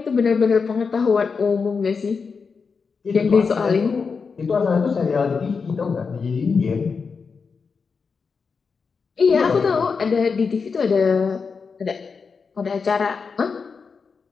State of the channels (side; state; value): right; quieter; 5.3 dB